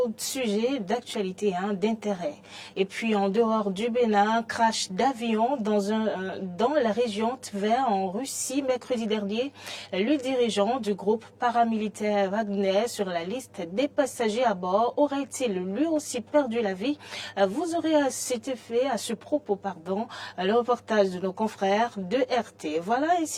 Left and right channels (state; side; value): identical; both; correlation 1.00